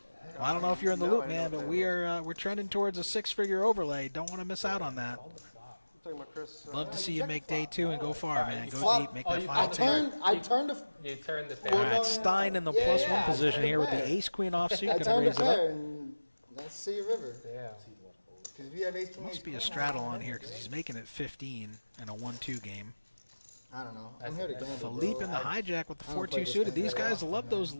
Well, I don't know if you're in the loop, man, but we're trending towards a 6-figure overlay. Don't want to miss out on that. Talking about Chris. Love to see you make day 2 and go far, man. Go deep, make that final table. I turned the. You turned the All pair. right, Stein in the +1 position here with the ace-queen offsuit. I Gonna turned raise the it up. pair and let's see a river. Yeah. Because if you have ace king, Must be a straddle on here because he's making it 15 in a 1-2 game. I don't know. I'm here to gamble. Philippe in the hijack with the 4-2 suited. These guys love those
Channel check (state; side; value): inverted; both; correlation -1.00